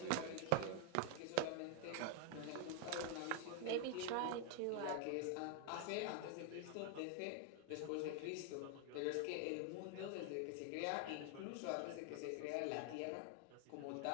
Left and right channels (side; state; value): both; different; correlation 0.00